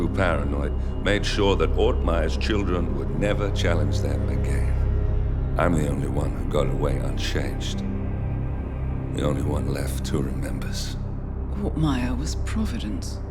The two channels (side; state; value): both; identical; correlation 1.00